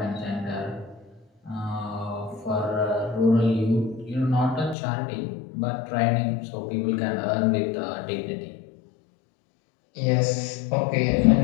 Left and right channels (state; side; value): drops out; right; at 4.8 s